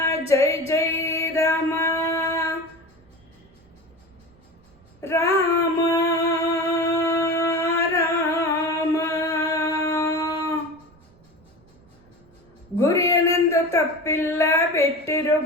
ಜೈ ಜೈ ರಾಮ, ರಾಮ ರಾಮ. ಗುರಿಯನೆಂದು ತಪ್ಪಿಲ್ಲ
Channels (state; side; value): noise; right; rumble, 30 dB below the sound